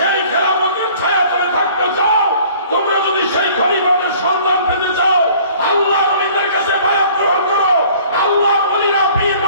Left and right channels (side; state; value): both; inverted; correlation -0.52